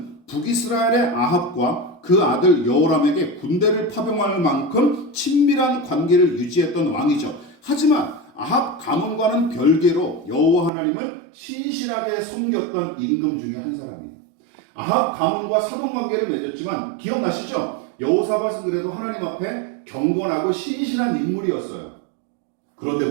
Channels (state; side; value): drops out; left; at 10.7 s